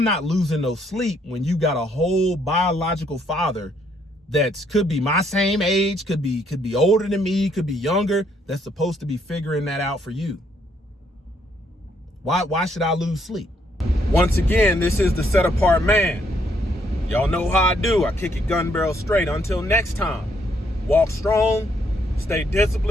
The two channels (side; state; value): both; normal; correlation 0.71